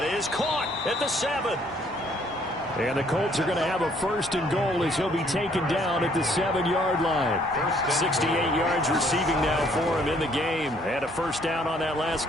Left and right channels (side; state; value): both; normal; correlation 0.64